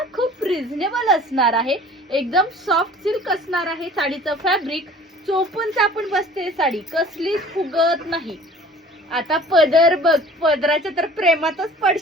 खूप रिझनेबल असणार आहे. एकदम सॉफ्ट सिल्क असणार आहे साडीचं फॅब्रिक. चोपून चापून बसते साडी, कसलीच फुगत नाही. आता पदर बघ, पदराच्या तर प्रेमातच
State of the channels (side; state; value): both; normal; correlation 0.48